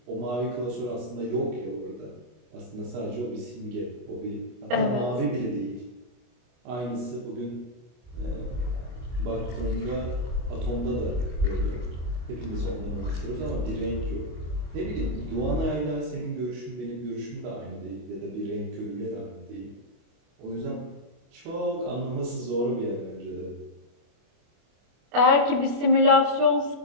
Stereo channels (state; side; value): late; left; 25 ms